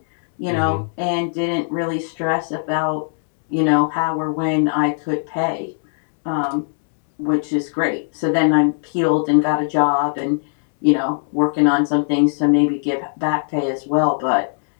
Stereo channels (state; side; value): silent; right; 66 dB below the other